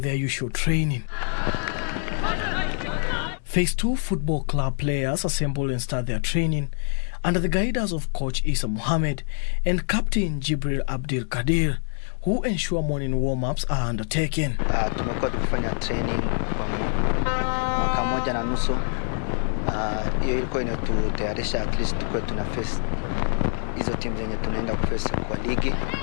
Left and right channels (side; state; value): right; silent; 62 dB below the other